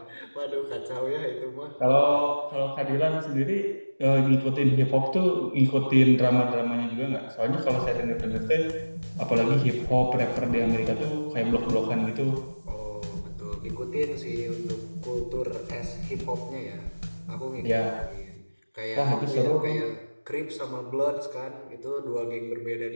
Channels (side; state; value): both; inverted; correlation -1.00